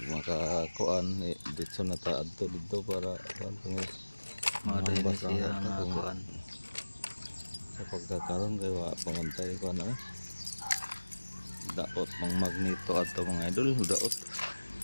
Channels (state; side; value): inverted; both; correlation -1.00